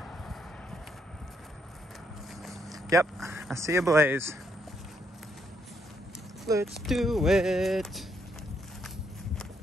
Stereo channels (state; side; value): normal; both; correlation 0.75